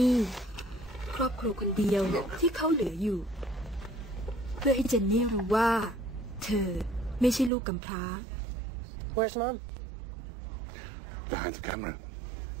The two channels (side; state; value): left; drops out; at 7.5 s